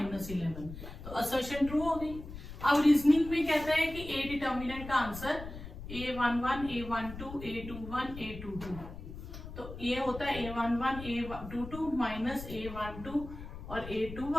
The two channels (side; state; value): left; noise; rumble, 11 dB below the sound